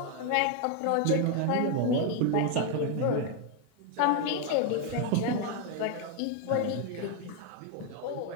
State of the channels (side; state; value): both; different; correlation 0.00